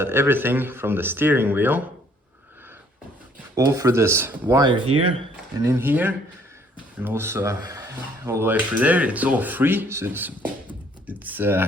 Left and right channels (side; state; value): both; normal; correlation 0.62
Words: everything from the steering wheel, all through this wire here and in here, and also all the way through there, it's all free, so